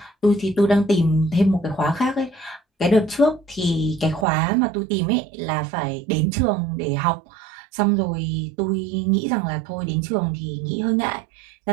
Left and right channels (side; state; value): left; drops out; at 4.2 s